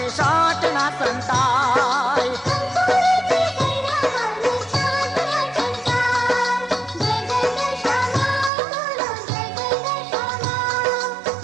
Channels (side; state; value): left; drops out; at 8.5 s